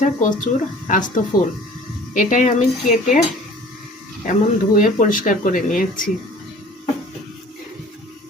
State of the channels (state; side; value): normal; both; correlation 0.48